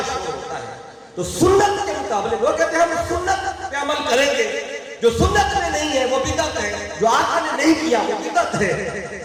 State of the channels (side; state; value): both; identical; correlation 1.00